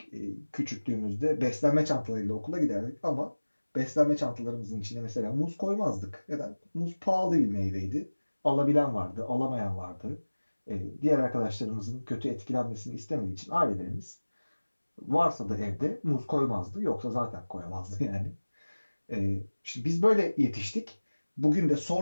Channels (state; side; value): inverted; both; correlation -1.00